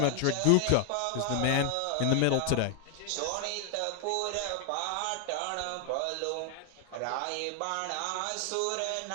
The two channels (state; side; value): different; both; correlation 0.00